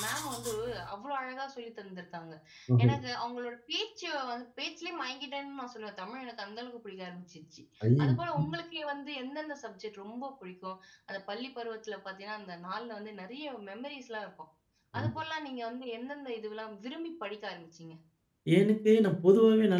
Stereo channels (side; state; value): both; identical; correlation 1.00